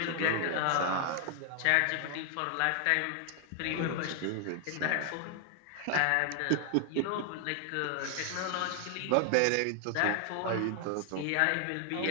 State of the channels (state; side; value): different; both; correlation 0.00